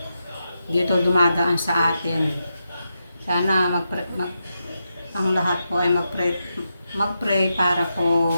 Dito dumadaan sa atin. Sana ang lahat po ay mag-pray para po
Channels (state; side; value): inverted; both; correlation -0.86